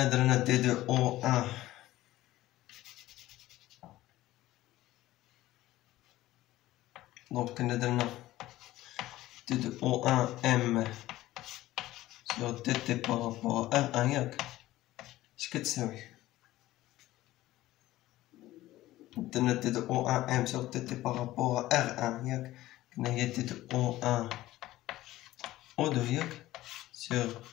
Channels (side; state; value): right; quieter; 16.1 dB